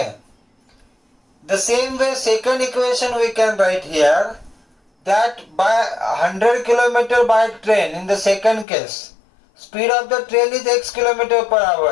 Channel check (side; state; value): right; drops out; at 8.7 s